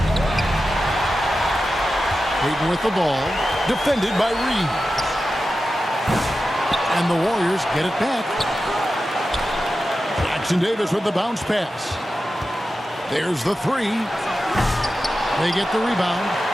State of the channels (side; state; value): both; normal; correlation 0.92